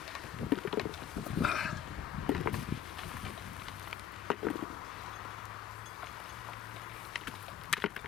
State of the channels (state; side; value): quieter; right; 9.7 dB